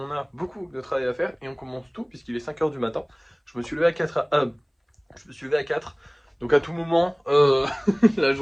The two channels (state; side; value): identical; both; correlation 1.00